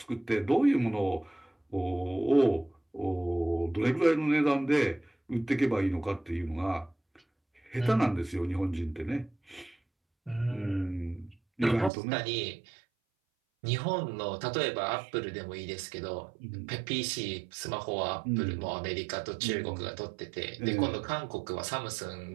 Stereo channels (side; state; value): left; drops out; at 11.9 s